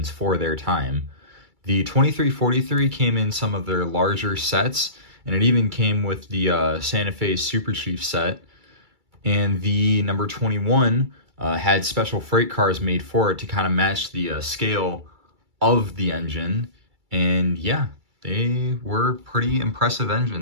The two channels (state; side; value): late; left; 2.3 ms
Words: for their time. The 2343 came in some of their larger sets, and it even came with the Santa Fe Super Chief set. And the number 21 had special freight cars made for it to kind of match the scale of the engine. And yeah, they were pretty impressive